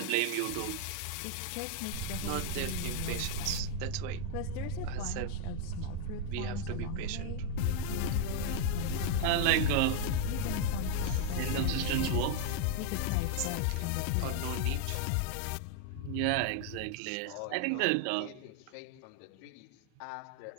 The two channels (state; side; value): different; both; correlation 0.00